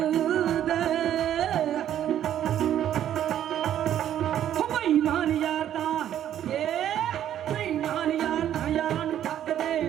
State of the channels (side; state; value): left; quieter; 10.9 dB